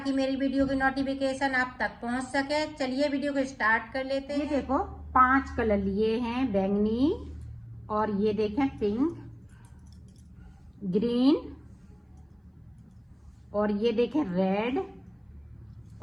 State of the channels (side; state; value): both; identical; correlation 1.00